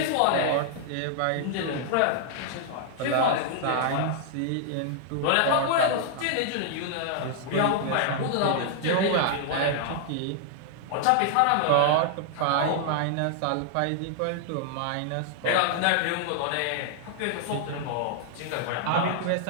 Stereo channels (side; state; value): both; different; correlation 0.00